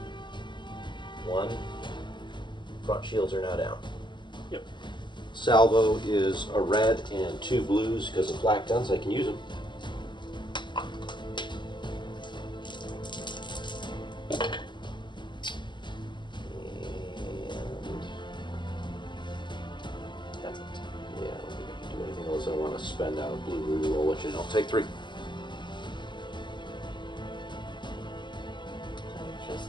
1. Front shields are now down. Yep. Salvo is a red and 2 blues because of flak guns. I can use them. That's it. Yeah, I don't think I can do anything else. I want to spend out a blue reroll, which is I'll take 3. I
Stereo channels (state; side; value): late; right; 0.22 ms